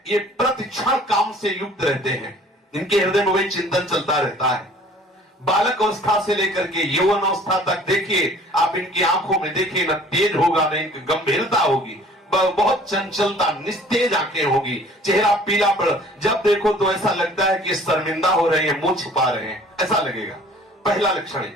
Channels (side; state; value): both; normal; correlation 0.52